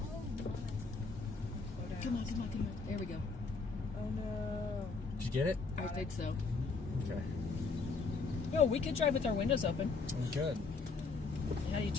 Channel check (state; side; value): quieter; right; 4.3 dB